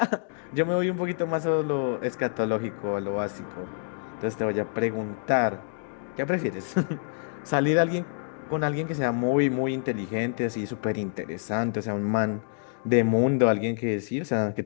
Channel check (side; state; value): right; silent; digital silence